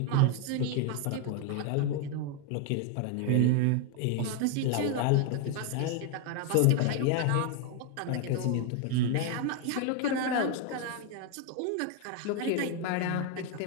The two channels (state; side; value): different; both; correlation 0.01